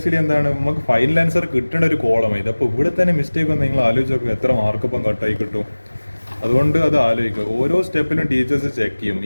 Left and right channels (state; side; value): inverted; both; correlation -1.00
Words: നമുക്ക് ഫൈനൽ ആൻസർ കിട്ടേണ്ട ഒരു കോളമാണ് ഇത്. അപ്പോൾ ഇവിടെ തന്നെ മിസ്റ്റേക്ക് വന്ന് നിങ്ങൾ ആലോചിച്ച് നോക്കുക എത്ര മാർക്ക് ഇപ്പം കട്ടായി കിട്ടും. അതുകൊണ്ട് അത് ആലോചിക്കുക. ഓരോ സ്റ്റെപ്പിലും ടീച്ചേഴ്സ് ചെക്ക് ചെയ്യും